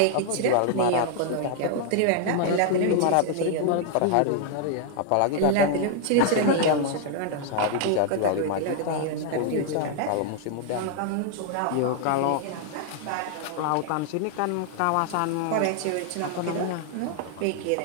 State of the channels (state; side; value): different; both; correlation 0.00